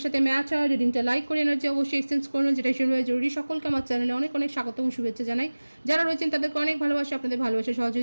সাথে ম্যাচ হয়, রিডিংটা লাইক করে এনার্জি অবশ্যই এক্সচেঞ্জ করুন, যেটা ভীষণভাবে জরুরি। সকলকে আমার চ্যানেলে অনেক অনেক স্বাগত এবং শুভেচ্ছা জানাই। যারা রয়েছেন তাদেরকে অনেক ভালোবাসা, আপনাদের ভালোবাসা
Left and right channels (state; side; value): inverted; both; correlation -1.00